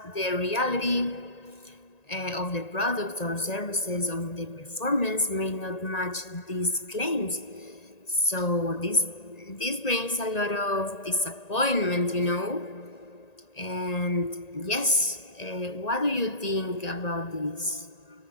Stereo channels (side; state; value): right; late; 1.9 ms